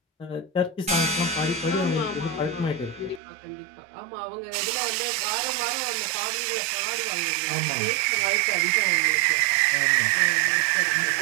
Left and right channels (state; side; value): drops out; left; at 3.2 s